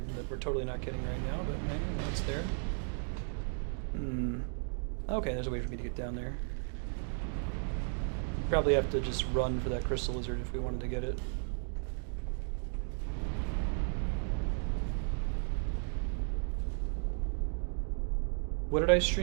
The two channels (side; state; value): left; silent; 55 dB below the other